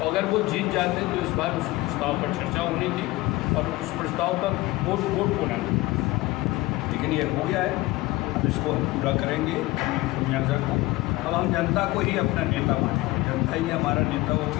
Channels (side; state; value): right; quieter; 19.8 dB